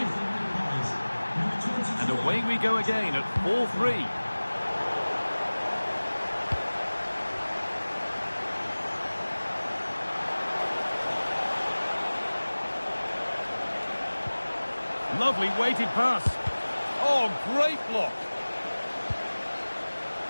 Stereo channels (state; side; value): inverted; both; correlation -1.00